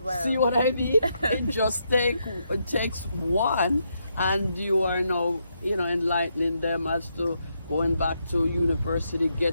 See what I mean? It takes one, and you are now, enlightening them as to going back to university,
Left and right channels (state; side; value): inverted; both; correlation -0.80